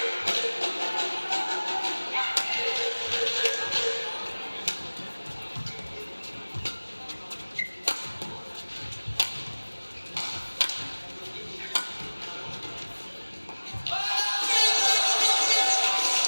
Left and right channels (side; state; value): both; inverted; correlation -1.00